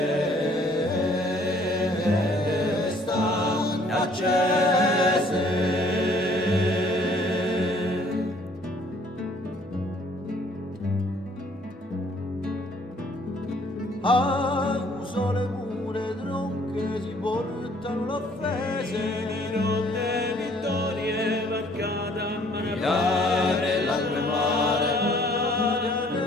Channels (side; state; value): both; normal; correlation 0.60